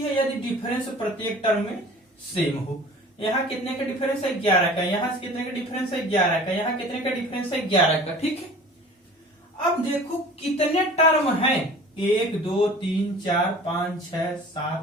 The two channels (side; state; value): both; normal; correlation 0.44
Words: है यदि डिफरेंस प्रत्येक टर्म में सेम हो। यहाँ कितने का डिफरेंस है 11 का, यहाँ से कितने का डिफरेंस है 11 का, यहाँ कितने का डिफरेंस है 11 का, ठीक है। अब देखो कितने टर्म हैं, 1 2 3 4 5 6